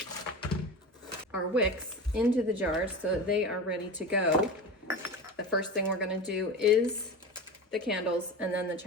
our wicks into the jars so that they are ready to go. The first thing we're gonna do is the candles, and then the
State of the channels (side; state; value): both; normal; correlation 0.28